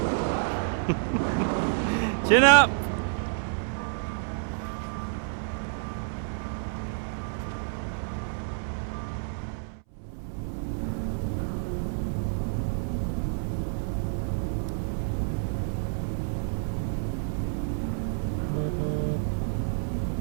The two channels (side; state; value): left; silent; 59 dB below the other